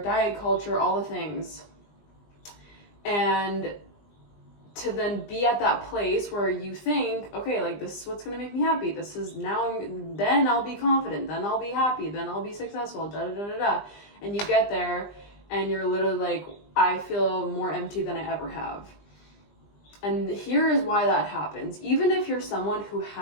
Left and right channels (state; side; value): late; right; 20 ms